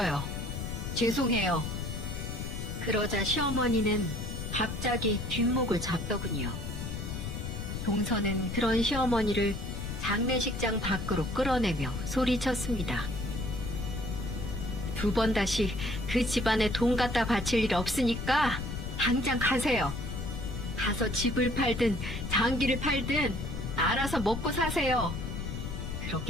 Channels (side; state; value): left; noise; rumble, 5 dB below the sound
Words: 죄송해요. 그러자 시어머니는 갑자기 뒷목을 잡더군요. 동서는 그런 시어머니를 장례식장 밖으로 끌어내며 소리쳤습니다. 두 번 다시 그 집안에 돈 갖다 바칠 일 없으니까 당장 가세요. 가서 집을 팔든 장기를 팔든 알아서 먹고 사세요.